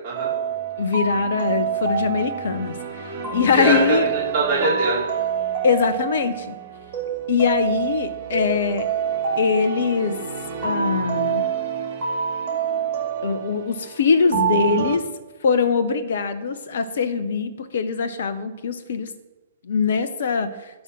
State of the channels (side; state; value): both; inverted; correlation -0.51